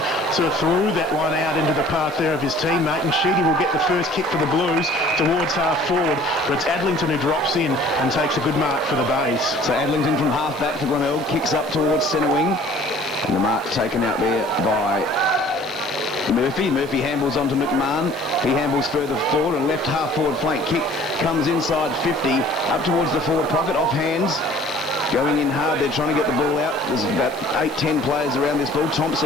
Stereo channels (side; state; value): both; normal; correlation 0.51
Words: sort of threw that one out into the path there of his teammate, and Sheedy will get the first kick for the Blues towards half forward, but it's Adlington who drops in and takes a good mark for the Bays. So Adlington from half back for Glenelg, kicks up towards centre wing, and the mark taken out there by Murphy. Murphy handballs onto McMahon. He handballs further forward, and left half forward flank kick comes inside 50, up towards the forward pocket, off hands. going in hard. They're trying to get the ball out. There's about 8-10 players around this ball.